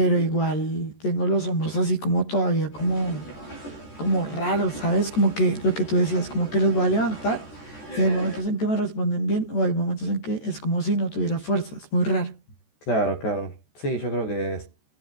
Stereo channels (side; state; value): right; late; 14 ms